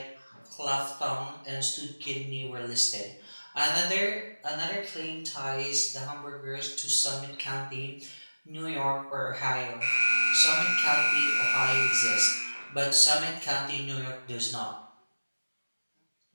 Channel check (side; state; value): both; inverted; correlation -1.00